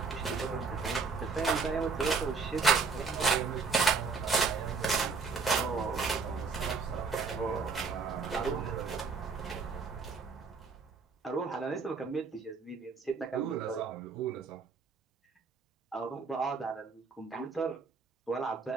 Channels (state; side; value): quieter; left; 4.8 dB